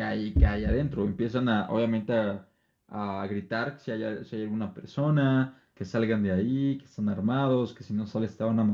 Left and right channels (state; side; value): identical; both; correlation 1.00